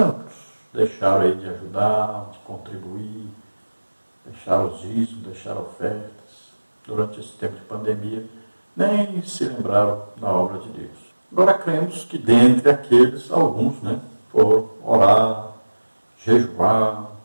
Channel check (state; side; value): inverted; both; correlation -1.00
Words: deixaram aí de ajudar, de contribuir, deixaram os dízimos, deixaram ofertas durante esse tempo de pandemia, nem se lembraram da obra de Deus. Agora cremos que dentre aqueles, alguns, né, foram orar, jejuar